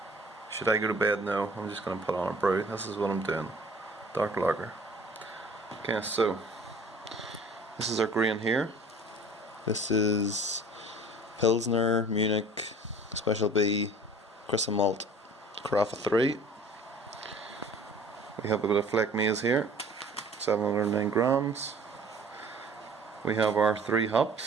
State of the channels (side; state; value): both; normal; correlation 0.49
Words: Should I go to bed? No, I'm just going to put on a brew. This is what I'm doing. Dark lager. Okay, so this is our grain here. This is Pilsner, Munich, Special B, Crystal Malt, Carafa 3. We have a bit of Fleck maize here, 709 grams. We have our 3